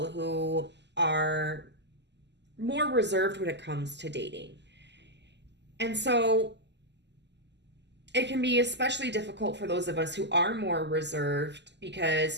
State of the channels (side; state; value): left; late; 0.50 ms